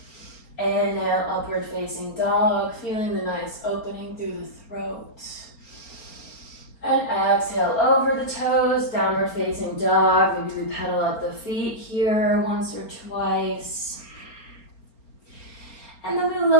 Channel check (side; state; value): right; late; 4.3 ms